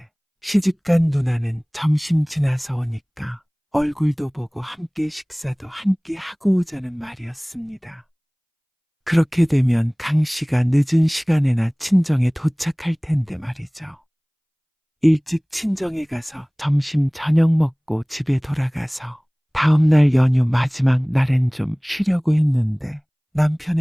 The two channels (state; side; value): identical; both; correlation 1.00